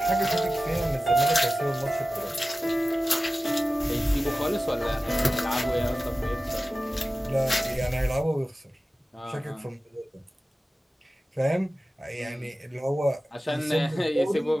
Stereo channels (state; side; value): normal; both; correlation 0.95